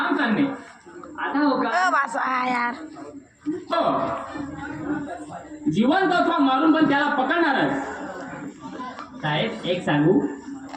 चालणे. आता हो का? यार हो. जिवंत अथवा मारून पण त्याला पकडणारच. साहेब एक सांगू,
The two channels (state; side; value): identical; both; correlation 1.00